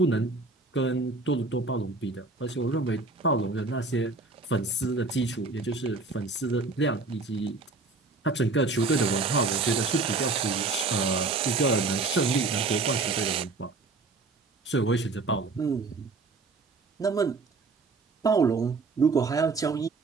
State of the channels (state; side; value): quieter; left; 3.8 dB